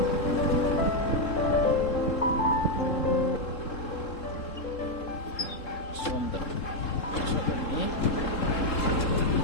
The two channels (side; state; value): right; late; 3.7 ms